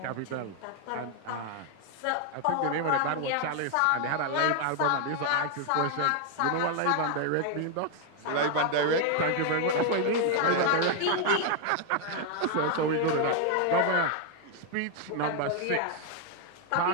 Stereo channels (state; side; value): different; both; correlation 0.00